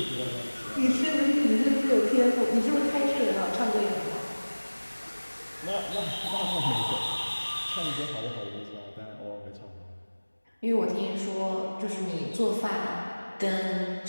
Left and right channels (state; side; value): inverted; both; correlation -1.00